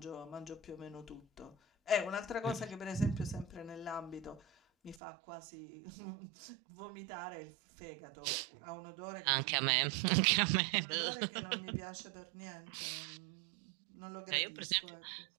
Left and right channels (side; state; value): left; drops out; at 5.0 s